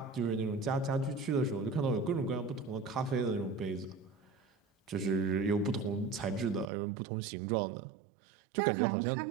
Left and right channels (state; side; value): drops out; left; at 6.7 s